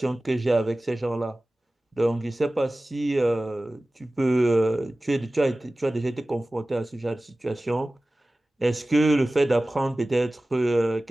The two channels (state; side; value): normal; both; correlation 0.97